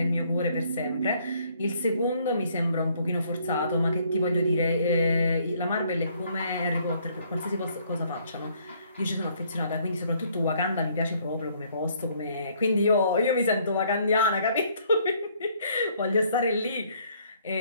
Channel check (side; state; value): both; inverted; correlation -0.65